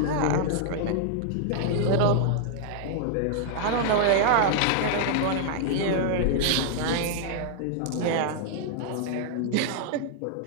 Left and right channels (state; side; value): different; both; correlation -0.01